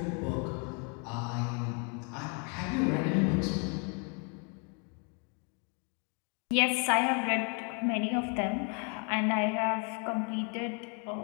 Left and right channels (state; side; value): quieter; right; 36.2 dB